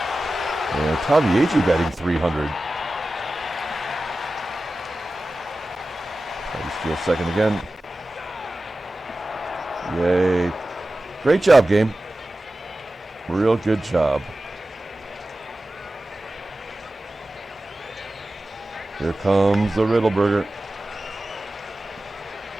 And Tommie AGEE batting .300. Try to steal second again. Yay. Great job, game. Real good job. Here comes the Riddleberger.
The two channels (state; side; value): normal; both; correlation 0.95